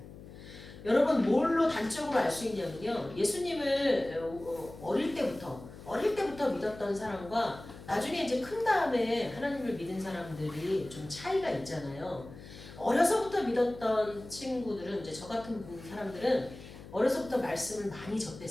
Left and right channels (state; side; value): noise; left; hum, 16 dB below the sound